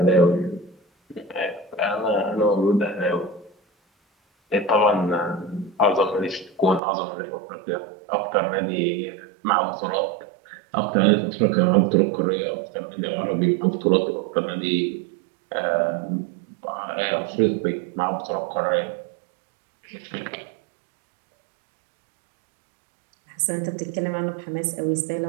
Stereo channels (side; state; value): left; drops out; at 6.8 s